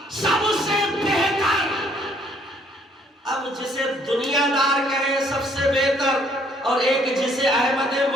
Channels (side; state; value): both; normal; correlation 0.65